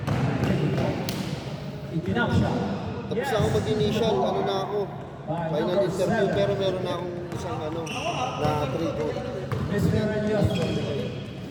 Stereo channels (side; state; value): both; identical; correlation 1.00